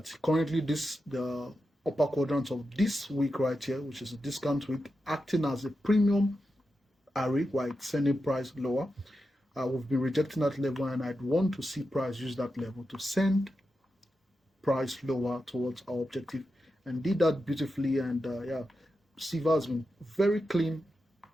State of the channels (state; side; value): normal; both; correlation 0.89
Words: currently the upper quadrant of this week right here, which is a discount week, acting as a premium array while it's sending price lower. We've been rejecting that level, and I'd want to see price use that level to send price lower towards our objective, and did that beautifully. And yeah, CEVA has been very clean,